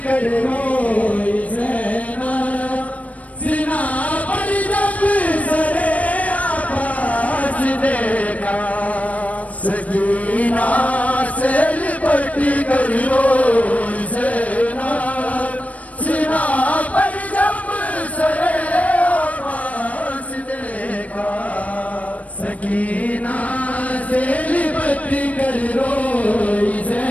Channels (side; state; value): right; late; 0.068 ms